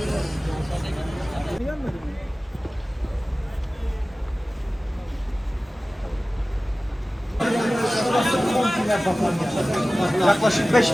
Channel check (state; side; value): normal; both; correlation 0.97